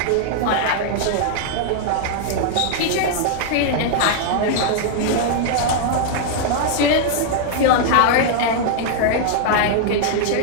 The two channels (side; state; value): both; different; correlation -0.01